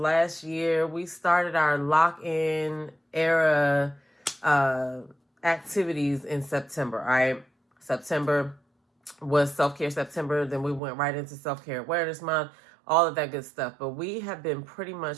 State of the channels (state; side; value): drops out; left; at 10.8 s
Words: year, we started our lock-in era activities in September. All right. September was self-care September. Then we went right into self-care awareness month, all of that good stuff. But we have been pretty much